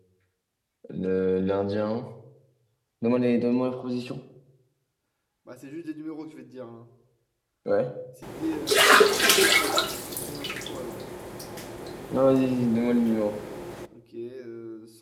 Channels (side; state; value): both; identical; correlation 1.00